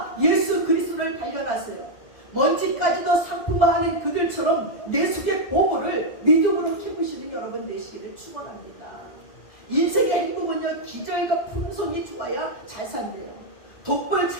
예수 그리스도를 발견하세요. 먼지까지도 상품화하는 그들처럼 내 속의 보물을 믿음으로 키우시는 여러분 되시기를 축원합니다. 인생의 행복은요, 기절과 품성이 좋아야 잘 산대요. 독불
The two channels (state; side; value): late; right; 2.0 ms